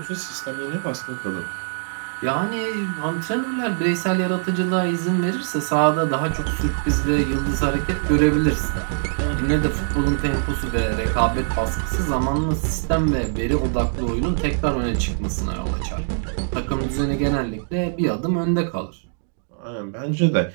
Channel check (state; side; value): silent; left; digital silence